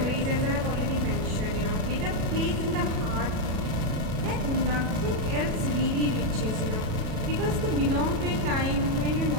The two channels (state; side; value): late; left; 37 ms